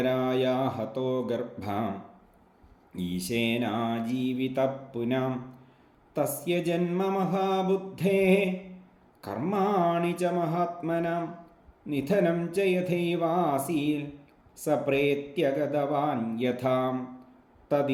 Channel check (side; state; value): both; identical; correlation 1.00